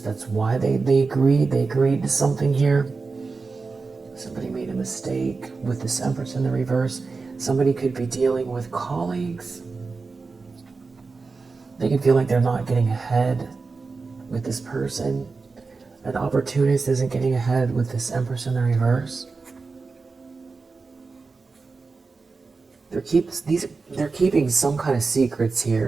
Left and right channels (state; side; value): quieter; left; 4.3 dB